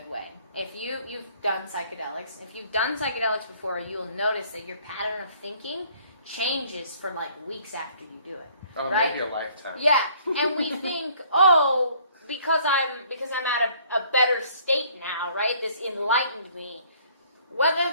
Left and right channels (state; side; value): inverted; both; correlation -0.59